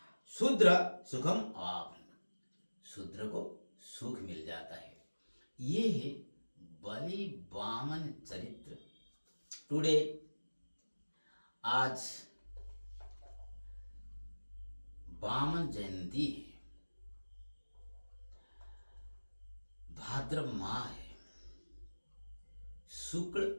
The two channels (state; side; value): inverted; both; correlation -1.00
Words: शूद्र सुखम आप्न, शूद्र को सुख मिल जाता है। ये है बलि वामन चरित्र। टुडे, आज वामन जयंती है, भाद्र माह है, शुक्ल